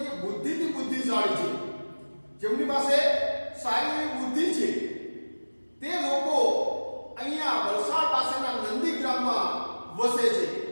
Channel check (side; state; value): both; inverted; correlation -1.00